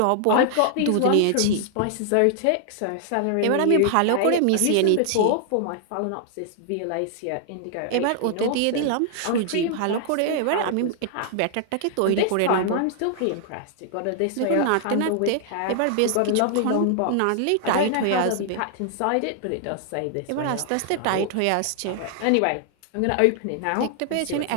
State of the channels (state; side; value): different; both; correlation 0.00